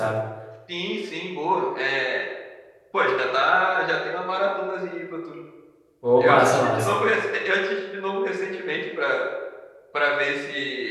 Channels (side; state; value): both; identical; correlation 1.00